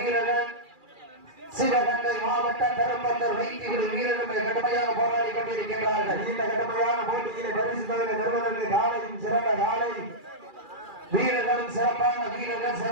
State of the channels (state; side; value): late; left; 2.4 ms